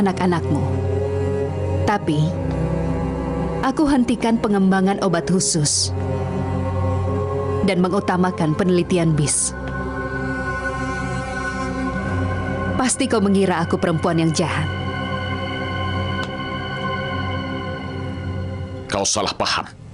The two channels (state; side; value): identical; both; correlation 1.00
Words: Tapi, aku hentikan pengembangan obat khusus dan mengutamakan penelitian bis. Pasti kau mengira aku perempuan yang jahat. Kau salah paham.